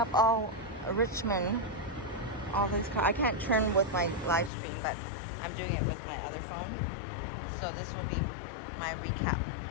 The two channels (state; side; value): drops out; right; at 4.5 s